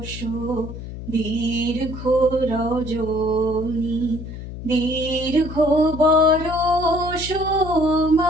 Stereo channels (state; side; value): noise; left; hum, 10 dB below the sound